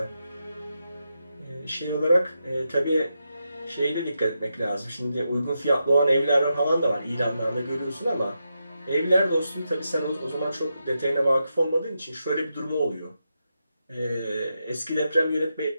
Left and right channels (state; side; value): inverted; both; correlation -0.86